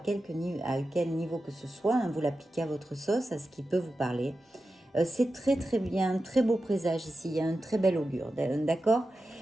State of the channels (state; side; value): normal; both; correlation 0.92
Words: niveau que ce soit, hein, vous l'appliquez à votre sauce, à ce qui peut vous parler. C'est très très bien, très beau présage ici, il y a un très bel augure, d'accord.